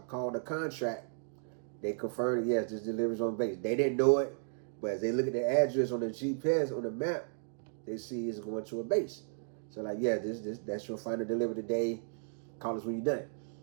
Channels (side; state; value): left; silent; digital silence